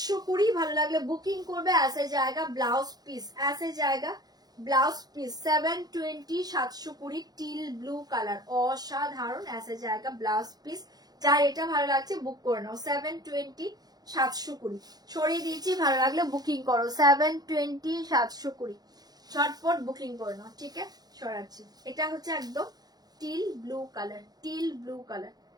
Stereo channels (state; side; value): late; left; 0.19 ms